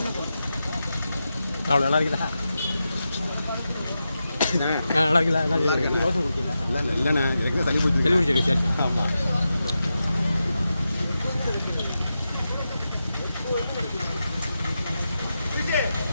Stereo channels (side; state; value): both; inverted; correlation -0.90